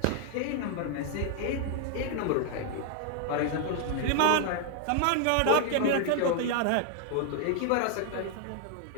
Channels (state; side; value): different; both; correlation 0.00